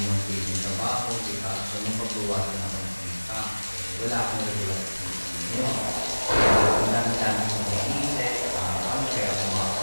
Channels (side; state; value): both; inverted; correlation -1.00